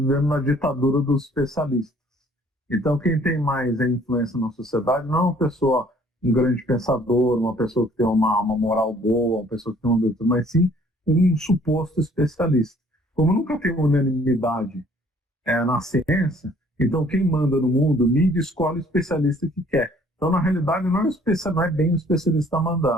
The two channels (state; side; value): normal; both; correlation 0.58